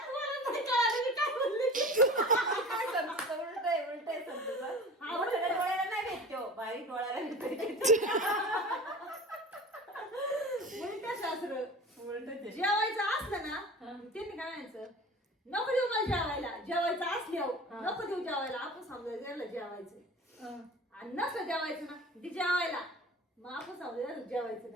बारीक डोळ्याला शास्त्र जेवायचं असलं ना त्यांनी काय म्हणायचं नको देऊ मला जेवायला, जेवायचं असल्यावर नको देऊ जेवायला. आपण समजायचं याला जेवायचं आणि नसलं जेवायचं ना ते जेवायला, मग आपण समजायचं जेवायचं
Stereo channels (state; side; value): normal; both; correlation 0.37